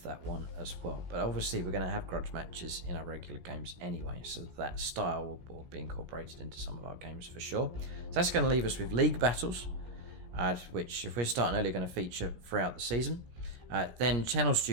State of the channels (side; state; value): left; late; 17 ms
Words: that one as well. But obviously we're going to have grudge matches in our regular games anyway, so that style will be incorporated into some of our games for sure. So that's going to leave us with league battles, which if we're starting early, are going to feature throughout the season. Then channel